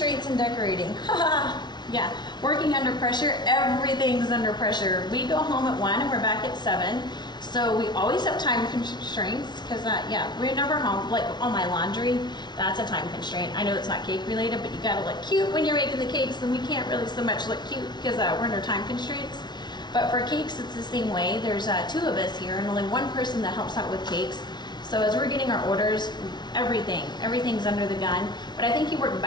and decorating. Yeah, working under pressure, everything's under pressure. We go home at 1 and we're back at 7. So we always have time constraints because, yeah, we're never home. Like on my laundry, that's a time constraint. I know it's not cake related, but you gotta look cute when you're making the cakes, and we can't really so much look cute because we're under time constraints. But for cakes, it's the same way. There's 2 of us here and only 1 person that helps out with cakes. So as we're getting our orders, everything's under the gun. But I think you work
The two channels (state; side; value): late; right; 0.20 ms